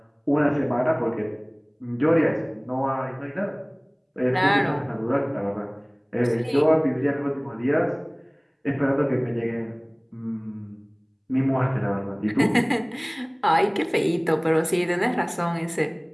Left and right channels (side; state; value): both; identical; correlation 1.00